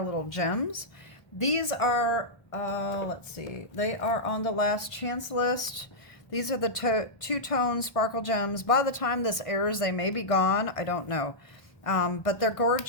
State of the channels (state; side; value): late; right; 1.6 ms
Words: little gems. These are, let's see, they are on the last chance list. These are the two-tone sparkle gems. By the time this airs, they may be gone. I don't know. But they're